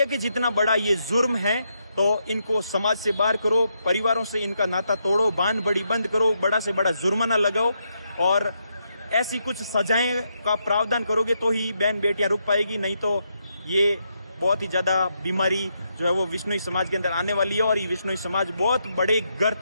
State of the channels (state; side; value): inverted; both; correlation -0.80